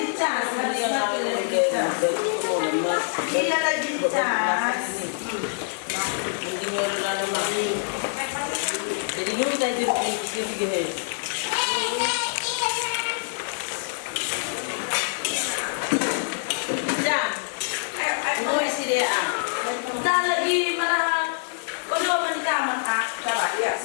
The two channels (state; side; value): silent; right; digital silence